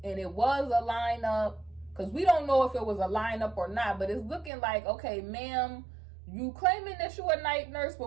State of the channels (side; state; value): left; drops out; at 4.5 s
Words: and it was a lineup, because we don't know if it was a lineup or not, but it's looking like, okay, ma'am, you claiming that you a night nurse,